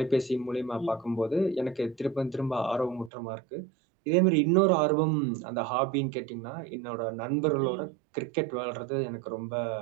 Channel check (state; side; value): drops out; left; at 3.1 s